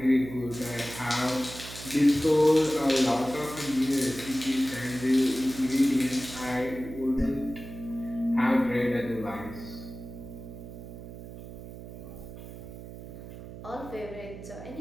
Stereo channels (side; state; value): right; noise; hum, 12 dB below the sound